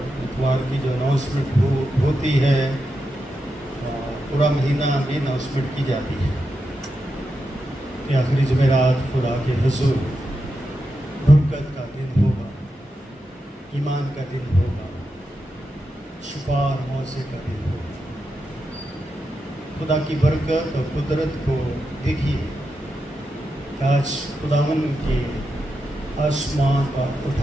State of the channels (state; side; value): normal; both; correlation 0.87